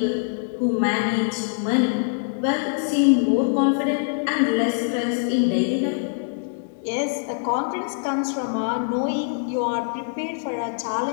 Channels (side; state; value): right; silent; digital silence